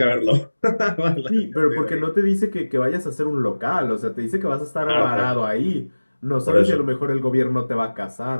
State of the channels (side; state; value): both; inverted; correlation -1.00